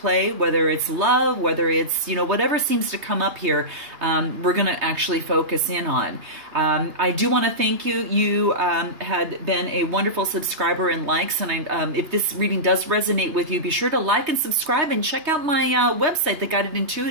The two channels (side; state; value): left; late; 2.9 ms